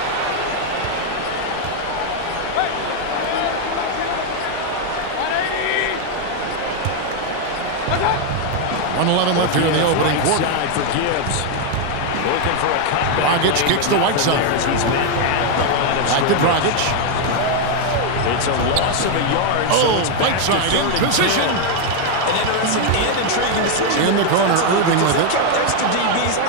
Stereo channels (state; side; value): different; both; correlation 0.01